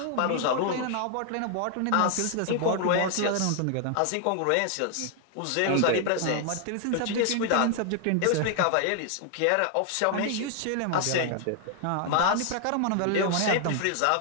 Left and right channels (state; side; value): different; both; correlation 0.00